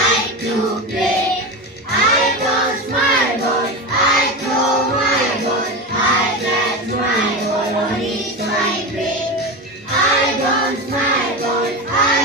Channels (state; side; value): normal; both; correlation 0.22